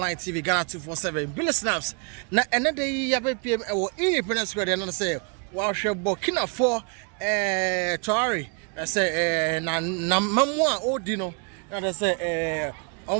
TV Ghana 247 Billy Snaps. Na another year PM or independence square and say wow Burkina for Traore. I say na mamwa odino. Na say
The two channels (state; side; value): quieter; left; 37.6 dB